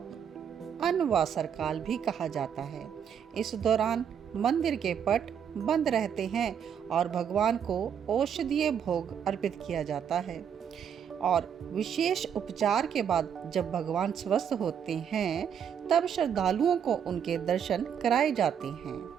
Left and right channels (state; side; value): quieter; left; 8.1 dB